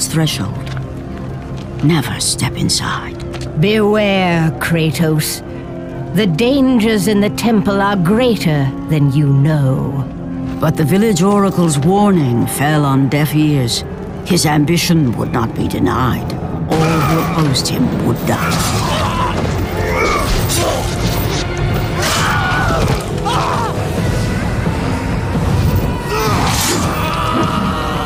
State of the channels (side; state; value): both; identical; correlation 1.00